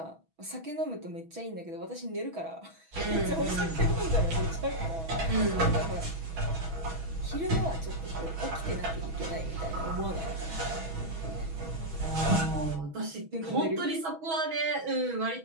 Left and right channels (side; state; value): left; late; 6.2 ms